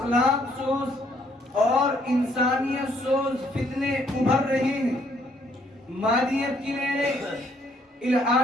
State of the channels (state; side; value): normal; both; correlation 0.67